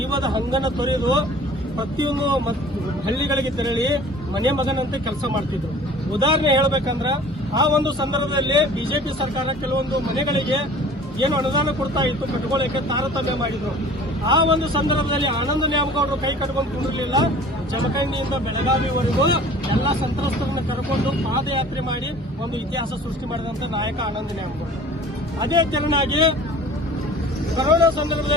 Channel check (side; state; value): both; normal; correlation 0.46